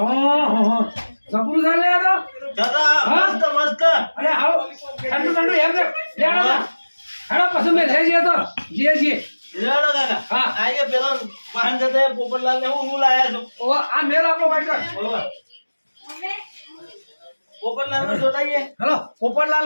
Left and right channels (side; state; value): both; inverted; correlation -1.00